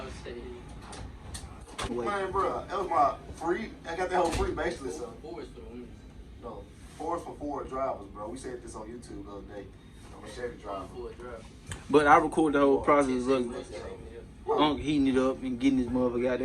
was saying. Man, bro, that was my free. I got that whole free basically, so. No, Fords for Ford drivers, bro. We said this on YouTube the other day. I'm a Chevy driver. But I recorded the whole process of heating it up and getting this motherfucker out.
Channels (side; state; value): both; identical; correlation 1.00